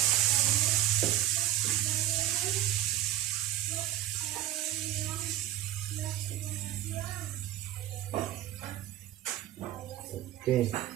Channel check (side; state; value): left; quieter; 13.7 dB